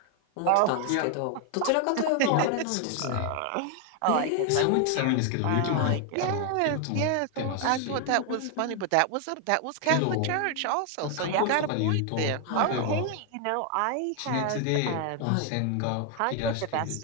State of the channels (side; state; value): both; different; correlation 0.00